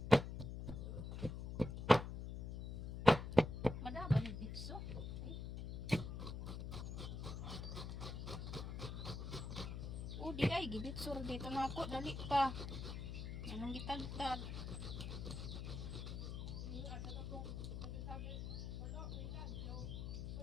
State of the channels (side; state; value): left; noise; hum, 5 dB below the sound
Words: madaba ni bitso. Di ay gibitsur dito na ako dali pa. Anong gitagtag?